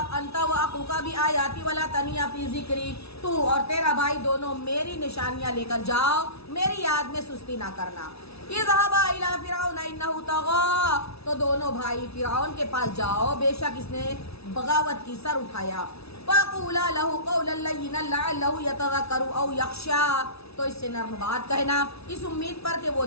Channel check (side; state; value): right; late; 0.78 ms